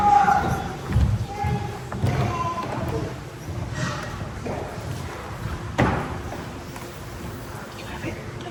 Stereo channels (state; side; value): identical; both; correlation 1.00